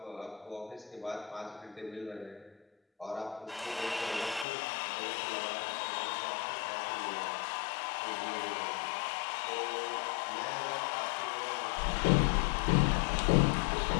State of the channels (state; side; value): drops out; right; at 4.5 s